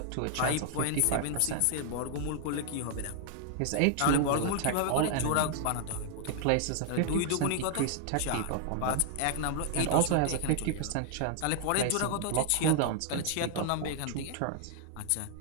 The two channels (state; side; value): different; both; correlation 0.00